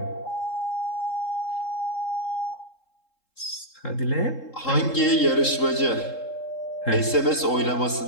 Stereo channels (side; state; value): right; late; 3.7 ms